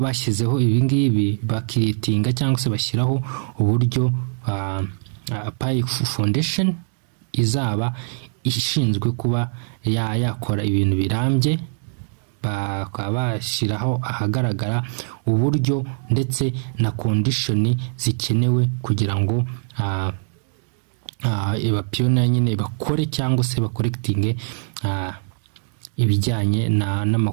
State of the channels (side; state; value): left; silent; 64 dB below the other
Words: ibingibi bakiritinga cyangwa se bashyiraho uburyo Pi Foundation izaba ishinzwe kuba yakora ibintu birambye, bakabashiraho ahagaragara uburyo ndetse na condition zikenewe kugira ngo pioneer nyine bakore cyangwa se bakorectinge ibijyanye